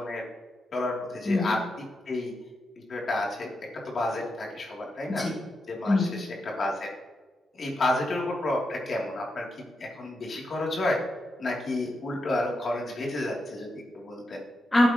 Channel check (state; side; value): normal; both; correlation 0.86